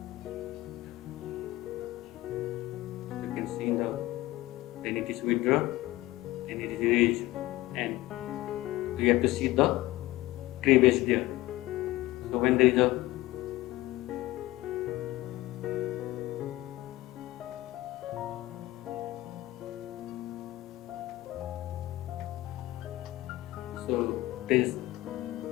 You can see then it is withdrawn and it is released, and you have to see the cleavage there. So when there is a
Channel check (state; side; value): quieter; right; 17.7 dB